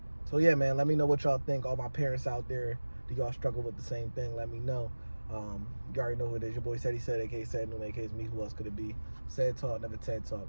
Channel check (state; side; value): inverted; both; correlation -1.00